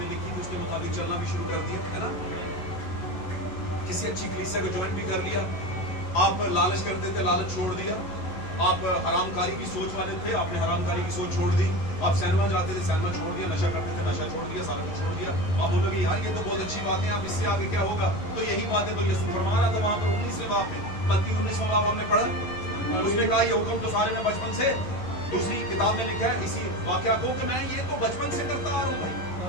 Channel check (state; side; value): late; right; 11 ms